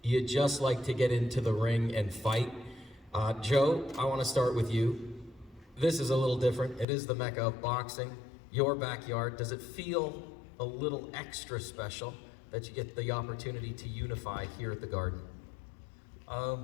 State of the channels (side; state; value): right; drops out; at 6.9 s